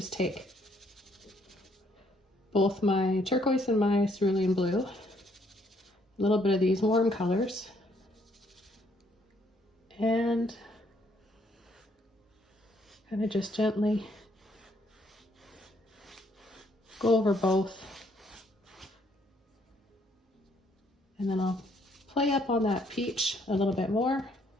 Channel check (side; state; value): both; normal; correlation 0.68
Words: take both my turquoise and my cerulean blue, a little bit of these warm colors, and kind of just gently go over both. And then I'll play up on that peach a little bit more.